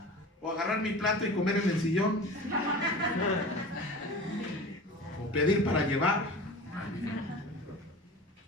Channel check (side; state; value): both; normal; correlation 0.36